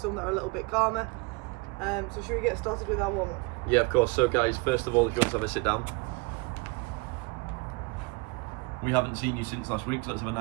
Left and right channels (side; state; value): left; quieter; 27.6 dB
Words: that are a little bit calmer. So should we get started with our warm-up? Yeah, of course. So guys, first of all, if you want to have a sit down. We haven't seen you since last week, so let's have a